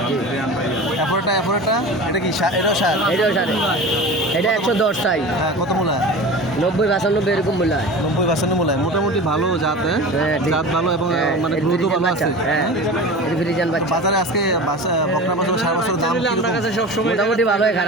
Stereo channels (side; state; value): both; normal; correlation 0.34